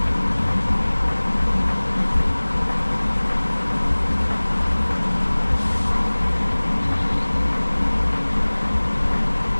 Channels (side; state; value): both; inverted; correlation -1.00